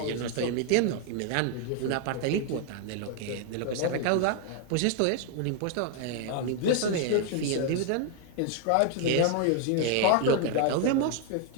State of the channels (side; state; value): both; different; correlation 0.00